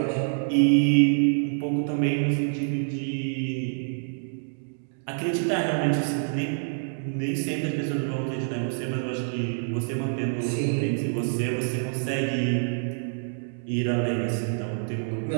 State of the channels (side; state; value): left; silent; digital silence